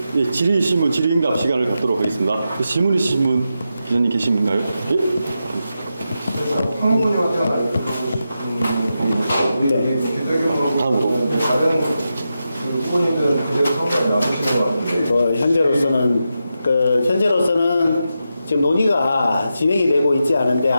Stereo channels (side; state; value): both; inverted; correlation -0.88